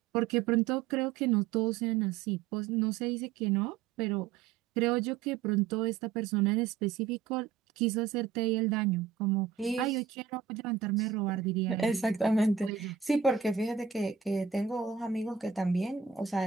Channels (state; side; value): quieter; left; 7.3 dB